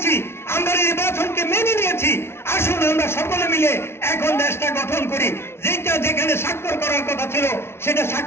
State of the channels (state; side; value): late; right; 0.12 ms